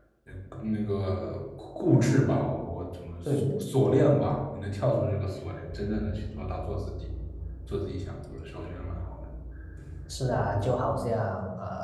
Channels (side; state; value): both; identical; correlation 1.00